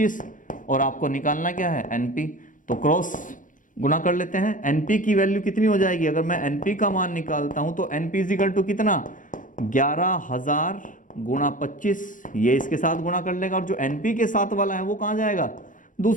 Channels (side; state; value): right; late; 0.38 ms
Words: और आपको निकालना क्या है NP। तो क्रॉस गुना कर लेते हैं। NP की वैल्यू कितनी हो जाएगी, अगर मैं NP का मान निकालता हूं तो NP इक्वल टू कितना, 11,000 गुणा 25, ये इसके साथ गुणा कर लेगा, और जो NP के साथ वाला है वो कहां जाएगा,